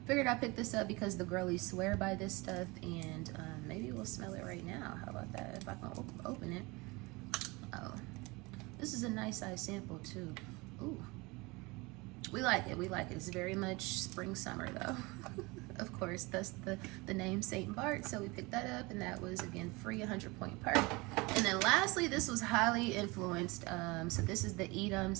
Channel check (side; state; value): left; quieter; 24.7 dB